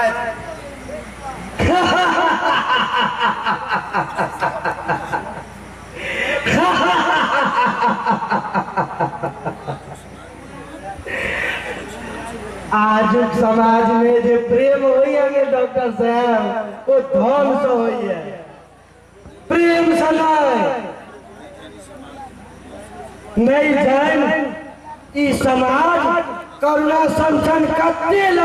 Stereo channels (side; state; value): both; identical; correlation 1.00